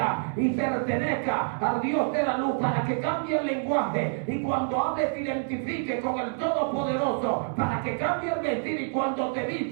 y pertenezca al Dios de la luz, para que cambie el lenguaje y cuando hables te identifique con el Todopoderoso, para que cambie el vestir y cuando te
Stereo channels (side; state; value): left; silent; 60 dB below the other